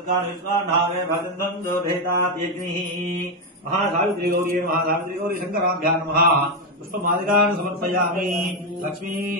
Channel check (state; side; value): normal; both; correlation 0.07